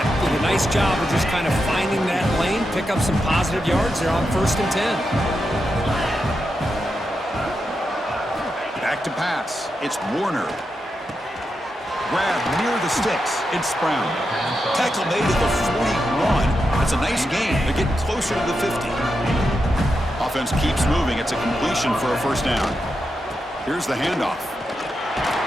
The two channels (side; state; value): both; normal; correlation 0.87